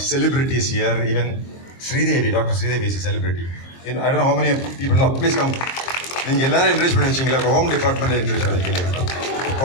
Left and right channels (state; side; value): late; right; 23 ms